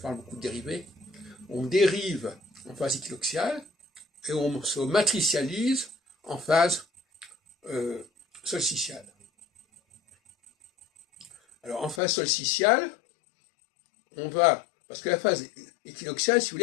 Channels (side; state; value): right; drops out; at 12.0 s